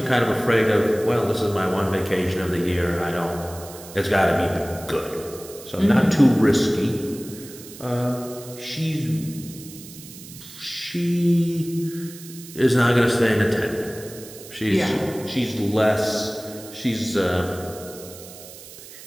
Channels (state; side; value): noise; right; hiss, 16 dB below the sound